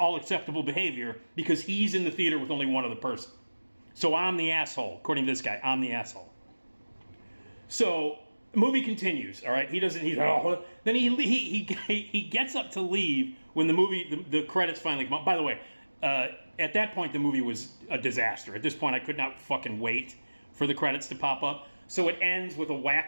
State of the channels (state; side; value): inverted; both; correlation -1.00